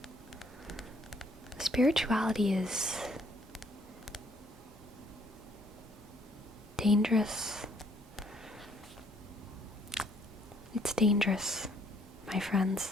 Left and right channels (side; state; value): both; normal; correlation 0.65